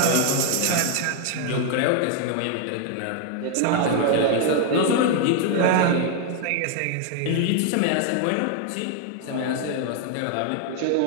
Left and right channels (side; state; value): both; different; correlation 0.00